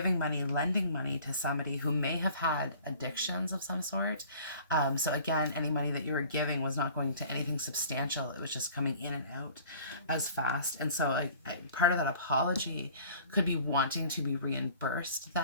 money, lending money to somebody who may have had addictions of some sort. So again, any money that you were giving was not going to anything substantial. It was just coming in and out as fast. And so part of that apology could be wanting to be reimbursed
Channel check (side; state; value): both; inverted; correlation -0.49